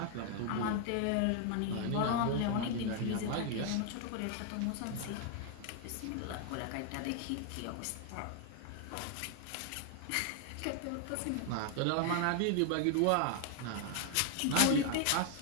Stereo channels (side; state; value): both; different; correlation 0.00